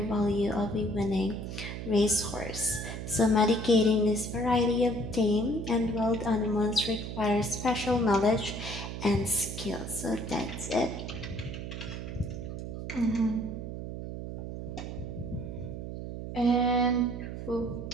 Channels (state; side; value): noise; right; hum, 7 dB below the sound